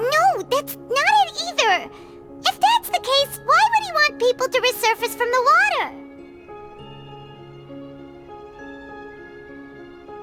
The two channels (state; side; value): identical; both; correlation 1.00